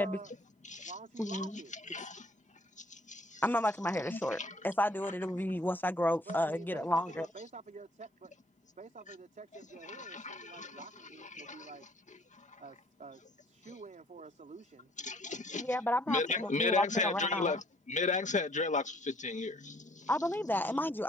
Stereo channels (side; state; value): both; normal; correlation 0.61